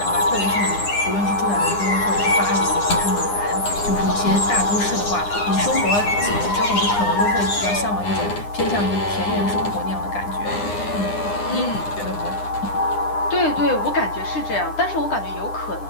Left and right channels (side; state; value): right; late; 9.8 ms